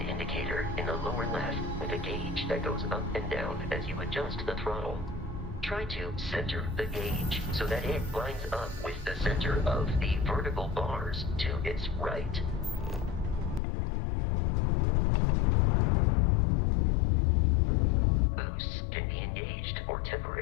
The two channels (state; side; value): drops out; right; at 13.6 s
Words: indicator in the lower left with a gauge that goes up and down as you adjust the throttle. Try to center the gauge so that it lines up with the center of the vertical bars to its right. Boosts can be engaged for